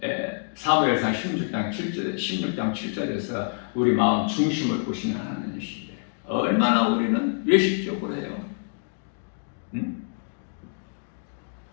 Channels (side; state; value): right; silent; digital silence